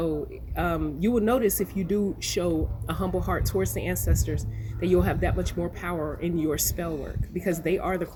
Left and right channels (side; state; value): both; identical; correlation 1.00